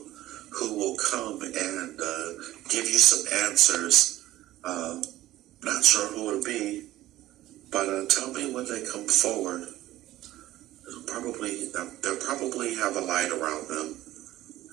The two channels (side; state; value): left; quieter; 15.4 dB